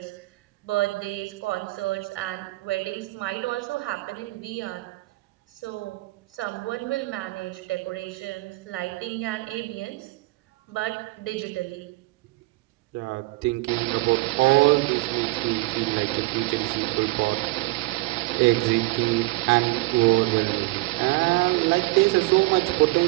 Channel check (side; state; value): left; quieter; 21.3 dB